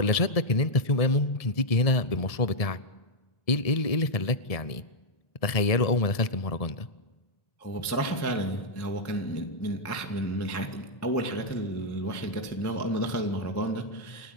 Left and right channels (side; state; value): right; late; 1.7 ms